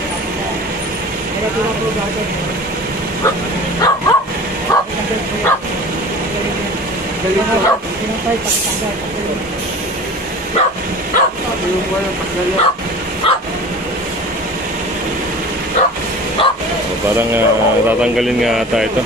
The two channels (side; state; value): both; normal; correlation 0.39